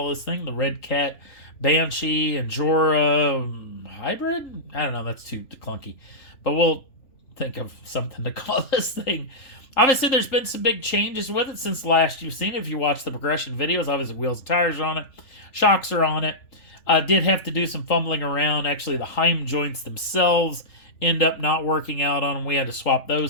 this thing. The Redcat Banshee Injora hybrid? I don't know. That's too clunky. But we'll think of something to call this thing. Obviously, there's been some big changes with it since last you've seen it. If you watch the progression videos, obviously wheels and tires are on it. Shocks are on it. Did have to do some fumbling around. Actually, the Heim joints themselves end up not working out on them. We had to swap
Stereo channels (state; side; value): late; right; 3.4 ms